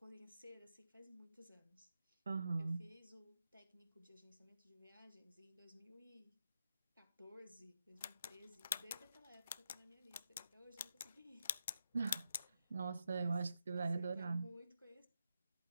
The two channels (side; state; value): both; inverted; correlation -0.84